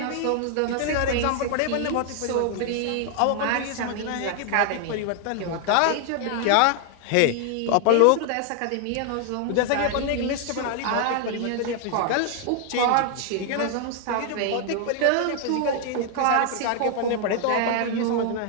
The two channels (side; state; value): both; different; correlation 0.00